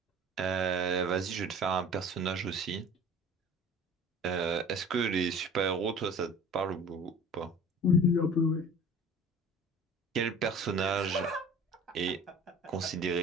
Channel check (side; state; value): both; normal; correlation 0.44